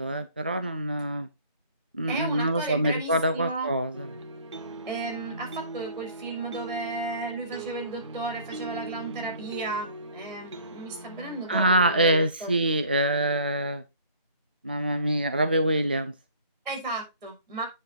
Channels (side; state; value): both; inverted; correlation -0.51